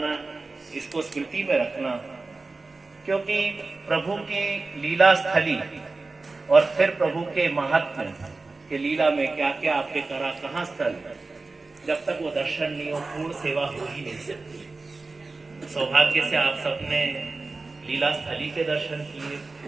इसको स्मृति में रखना, क्योंकि प्रभु की लीला स्थली और फिर प्रभु के महात्म्य के लीला में क्या क्या आपके करा, कहाँ स्थल, जब तक वो दर्शन नहीं हो पूर्ण सेवा हो ही नहीं सकती। सौभाग्य से आप सबने लीला स्थली के दर्शन किए,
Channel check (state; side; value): quieter; left; 3.6 dB